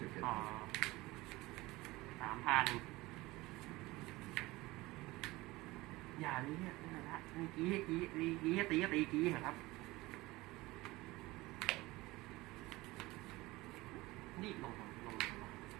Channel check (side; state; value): left; quieter; 20.3 dB